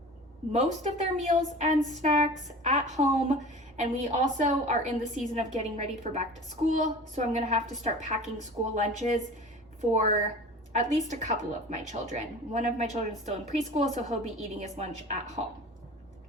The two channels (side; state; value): both; normal; correlation 0.39